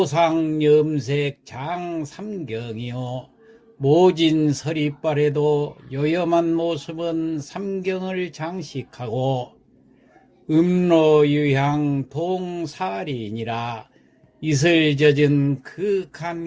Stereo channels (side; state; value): both; identical; correlation 1.00